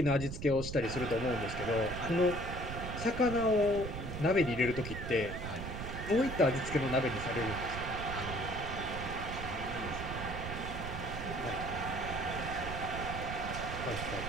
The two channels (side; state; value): right; noise; rumble, 6 dB below the sound